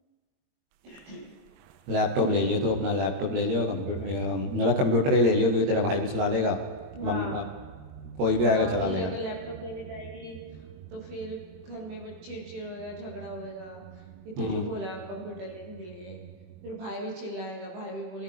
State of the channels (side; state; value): left; late; 22 ms